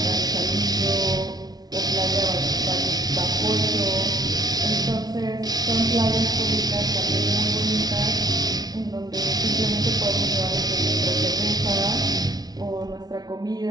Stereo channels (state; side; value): late; left; 0.19 ms